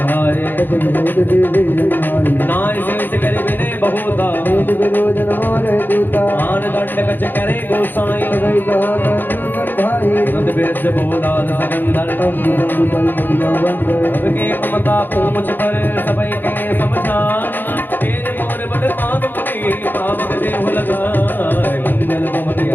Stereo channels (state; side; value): late; right; 0.092 ms